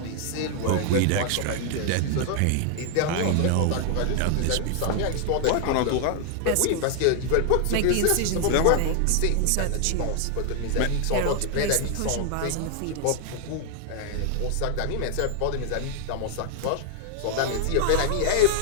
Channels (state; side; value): different; both; correlation 0.00